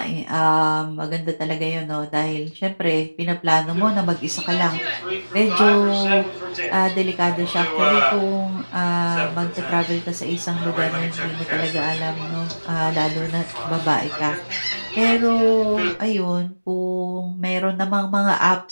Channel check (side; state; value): both; inverted; correlation -1.00